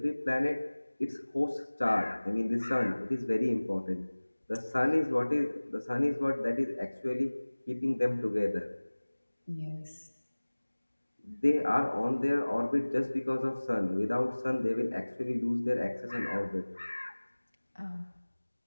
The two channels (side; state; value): both; inverted; correlation -1.00